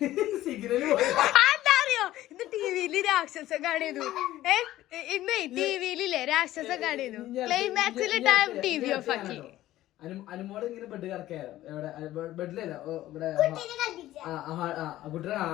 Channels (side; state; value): right; quieter; 14.7 dB